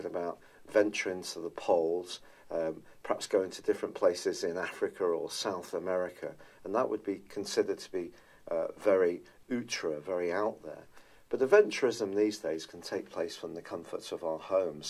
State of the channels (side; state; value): both; identical; correlation 1.00